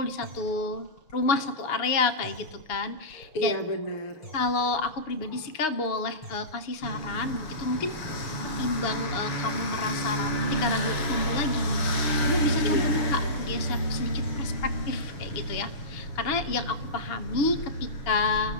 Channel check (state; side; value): late; right; 6.4 ms